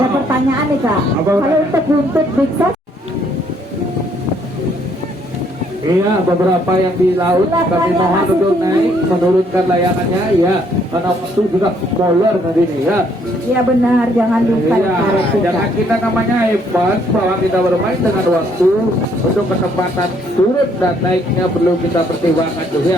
pertanyaan nih kak. Apa Kalau untuk buntut Big Sos, iya beberapa yang di laut kami mohon untuk naik menurunkan layangannya ya, karena waktu sudah molor tadi nih ya. iya benar, jangan lupa Iya, karet tuh, jangan kak. kita namanya hebat bahwa kita bermain dengan waktu. Untuk kecepatan turun dan naiknya perlu kita pertimbangkan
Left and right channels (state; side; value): normal; both; correlation 0.67